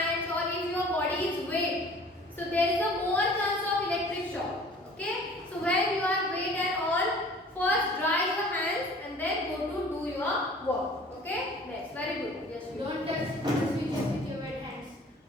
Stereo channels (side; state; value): both; normal; correlation 0.48